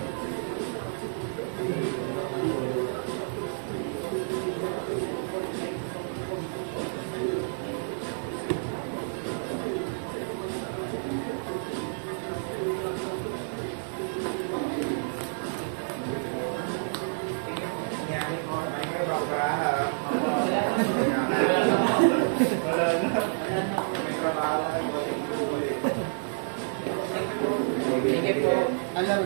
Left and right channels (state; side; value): silent; left; digital silence